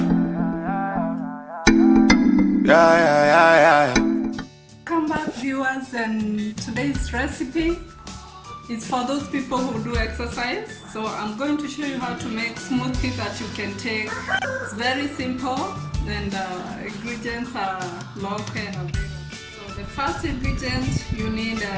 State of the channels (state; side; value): identical; both; correlation 1.00